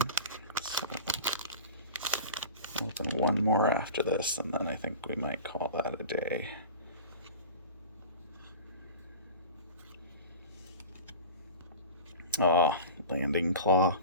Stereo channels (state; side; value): inverted; both; correlation -0.34